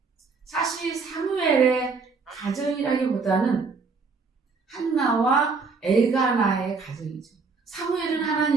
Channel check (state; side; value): quieter; left; 4.6 dB